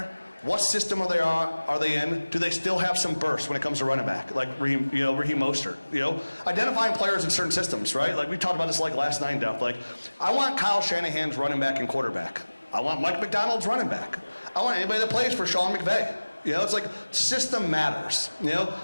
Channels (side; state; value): both; inverted; correlation -1.00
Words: What system are they in? Do they still have some burst when it comes to running back? Like Raheem Mostert. Identifying players in certain systems, right? Like we talked about this like last night in depth. Like, I want Kyle Shanahan's running back and quarterback. I want Mike McDonald's running back. I want anybody that plays for Sean McVay. You know, it's like system matters. You know,